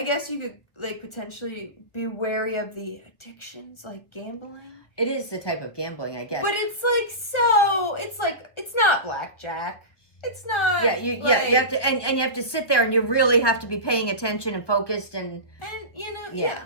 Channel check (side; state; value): right; late; 1.1 ms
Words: guess you could like potentially be wary of the addictions, like gambling. It is the type of gambling, I guess. But it's like it's not blackjack. It's not. Yeah, you have to, and you have to sit there, and you really have to be paying attention and focused, and yeah.